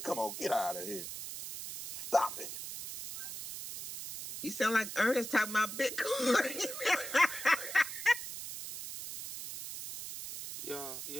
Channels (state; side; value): noise; right; hiss, 8 dB below the sound